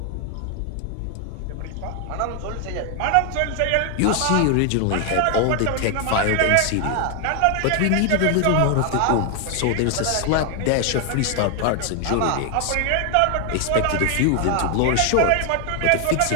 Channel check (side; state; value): both; different; correlation 0.00